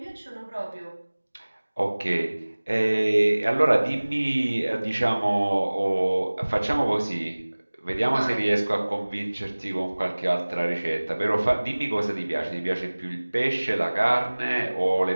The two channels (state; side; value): inverted; both; correlation -1.00